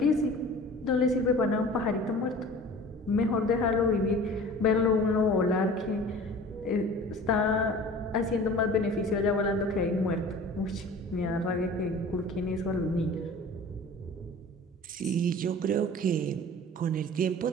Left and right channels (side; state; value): both; normal; correlation 0.42